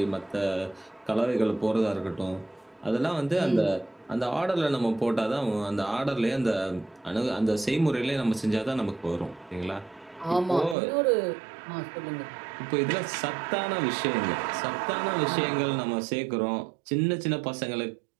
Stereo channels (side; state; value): left; drops out; at 10.8 s